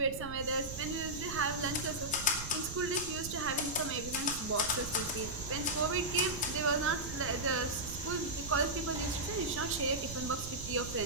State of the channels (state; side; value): noise; right; rumble, 9 dB below the sound